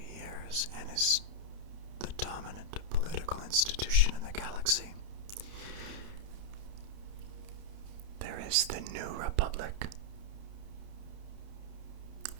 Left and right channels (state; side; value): late; left; 30 ms